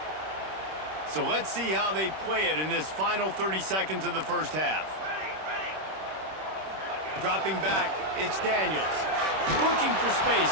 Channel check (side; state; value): left; late; 26 ms